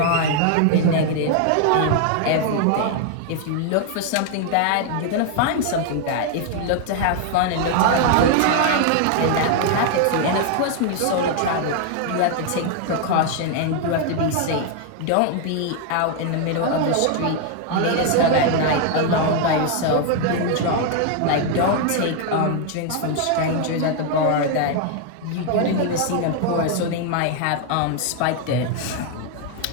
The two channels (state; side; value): different; both; correlation 0.00